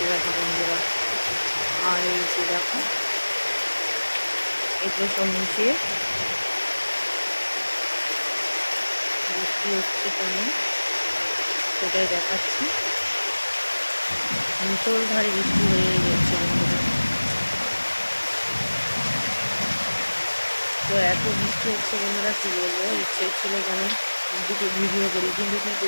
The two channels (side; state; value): both; inverted; correlation -1.00